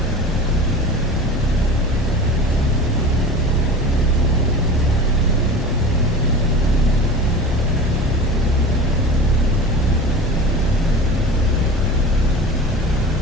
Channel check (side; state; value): both; normal; correlation 0.34